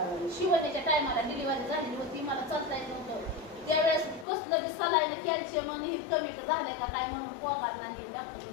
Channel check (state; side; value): drops out; right; at 4.2 s